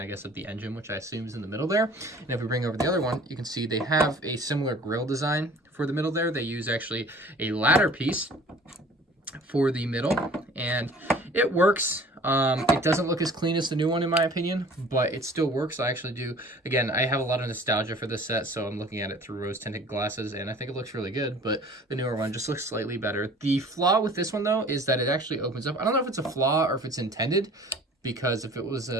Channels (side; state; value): both; normal; correlation 0.48